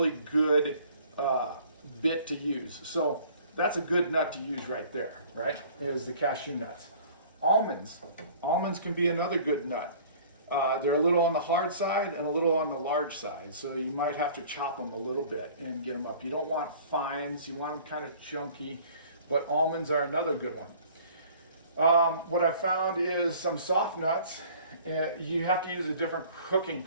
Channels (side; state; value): both; inverted; correlation -0.50